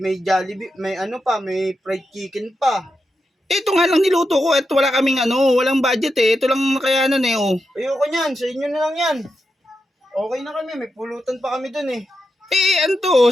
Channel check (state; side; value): normal; both; correlation 0.87